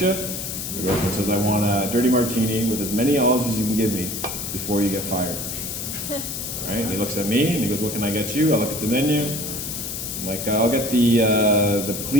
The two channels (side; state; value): left; noise; hiss, 5 dB below the sound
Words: you? The girlfriend says, I want a dirty martini with as many olives as you can give me before you get fired. Right? And he looks at me and he goes, what can I get you? I look at the menu. I'm like, I'll get the